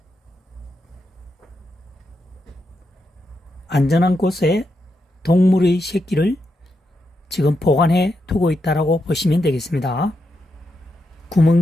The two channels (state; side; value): normal; both; correlation 0.84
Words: 안전한 곳에 동물의 새끼를 지금 보관해 두고 있다라고 보시면 되겠습니다.